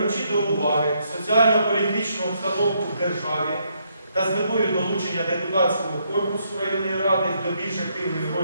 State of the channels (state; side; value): inverted; both; correlation -0.74